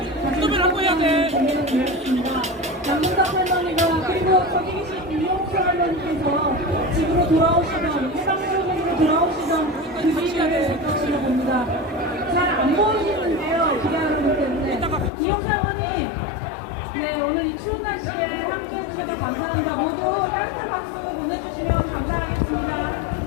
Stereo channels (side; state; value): right; drops out; at 15.1 s